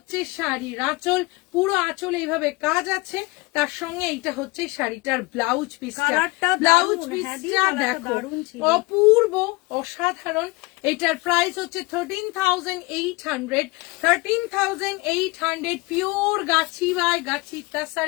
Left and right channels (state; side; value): quieter; right; 24.0 dB